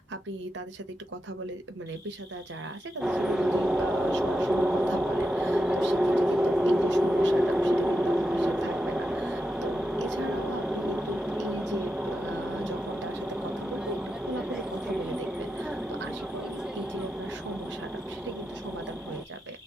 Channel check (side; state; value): both; normal; correlation 0.87